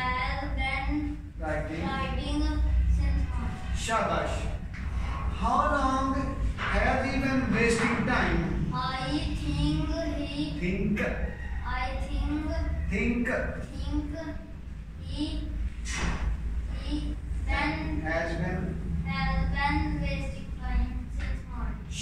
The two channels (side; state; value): both; identical; correlation 1.00